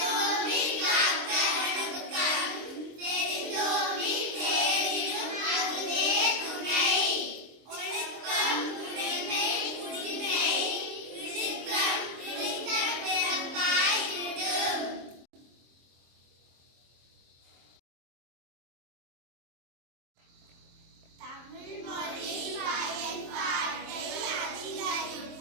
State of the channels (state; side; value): late; left; 23 ms